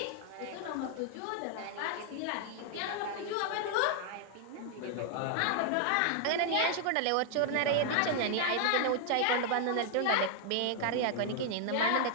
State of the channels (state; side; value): different; both; correlation 0.00